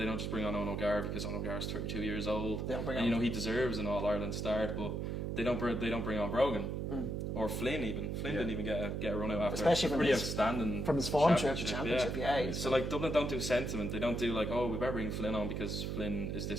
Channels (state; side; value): noise; right; hum, 2 dB below the sound